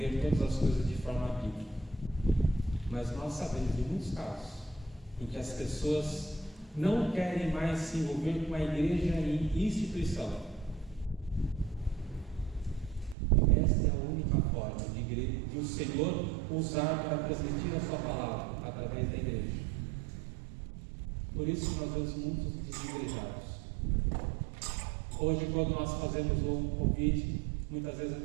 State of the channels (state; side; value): drops out; left; at 13.2 s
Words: todas as coisas de forma bíblica. Mas nós sabemos de muitos casos em que as pessoas não querem mais se envolver com a igreja e instituição. Esta é a única forma de o Senhor usar para transmitir a sua palavra através da igreja. Por isso nós vemos muitos desigrejados. Hoje, quando nós fazemos um convite, muitas vezes a